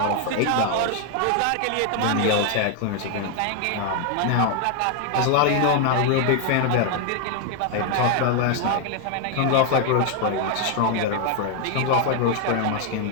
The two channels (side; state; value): both; different; correlation 0.01